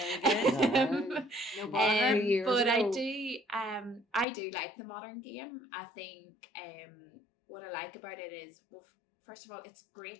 But I do like the modern game. I think what I like about it is, well, first of all, it's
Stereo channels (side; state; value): right; drops out; at 4.2 s